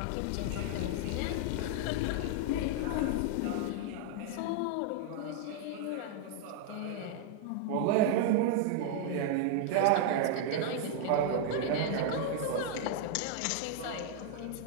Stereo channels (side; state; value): both; different; correlation 0.00